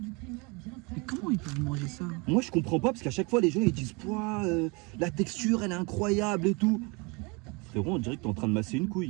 Mais comment ils peuvent manger ça? Moi, je comprends pas parce qu'à chaque fois, les gens ils disent Pouah, la texture elle est incroyable et tout. Frérot, on dirait que t'es en train de masser une couille.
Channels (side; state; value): left; quieter; 28.8 dB